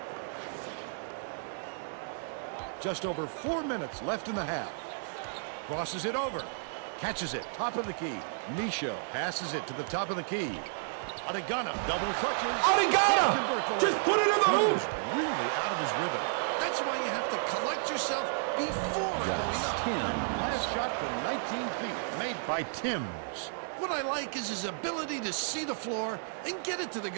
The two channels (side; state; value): left; silent; digital silence